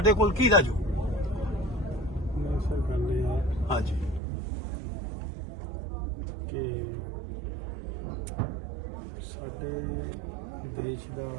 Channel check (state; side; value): drops out; left; at 4.2 s